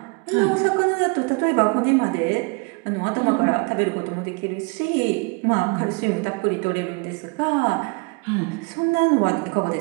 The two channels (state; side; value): quieter; left; 30.8 dB